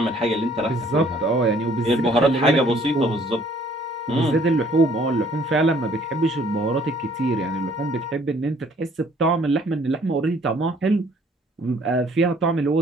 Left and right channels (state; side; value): normal; both; correlation 0.60